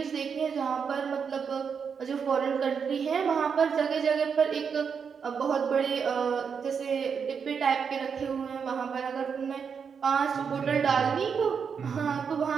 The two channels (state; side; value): quieter; left; 6.4 dB